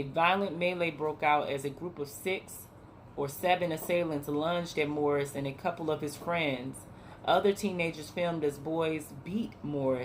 violent melee broke out as a group of 6 or 7 assailants lunged at Morris and a couple of his friends. Other teenagers filmed as boys beat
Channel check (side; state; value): both; identical; correlation 1.00